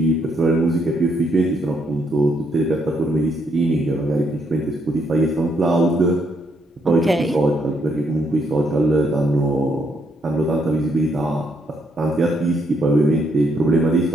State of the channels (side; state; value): both; normal; correlation 0.74